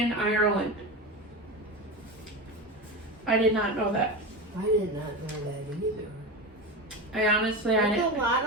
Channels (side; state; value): both; normal; correlation 0.22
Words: Ireland. I did not know that. I did not know that either. I honestly, There's a lot